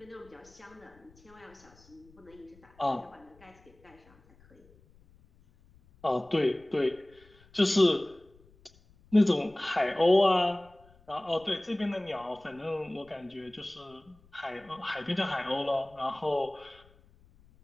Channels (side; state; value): left; noise; rumble, 28 dB below the sound